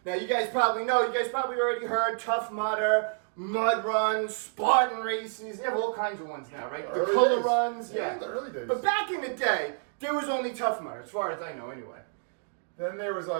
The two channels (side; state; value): left; silent; digital silence